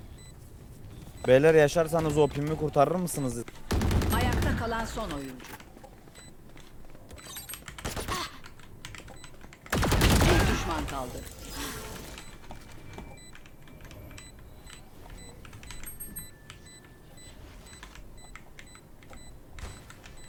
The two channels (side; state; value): both; identical; correlation 1.00